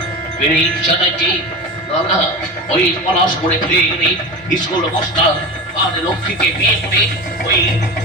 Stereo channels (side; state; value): both; normal; correlation 0.27